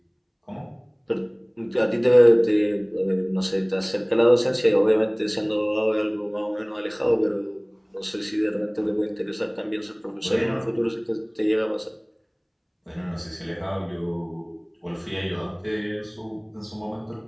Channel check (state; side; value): identical; both; correlation 1.00